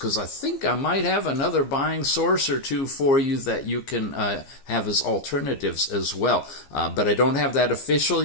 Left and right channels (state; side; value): late; right; 15 ms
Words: I think I might have another buying source or two for you that you can have as alternatives as well. But I don't have that official